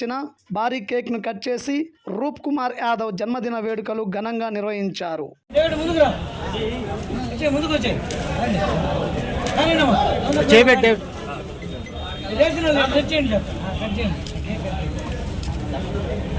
భారీ కేక్ను కట్ చేసి రూప్ కుమార్ యాదవ్ జన్మదిన వేడుకలు ఘనంగా నిర్వహించారు.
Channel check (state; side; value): identical; both; correlation 1.00